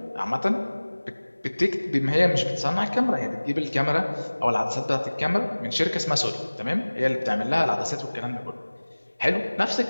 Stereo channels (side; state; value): both; inverted; correlation -1.00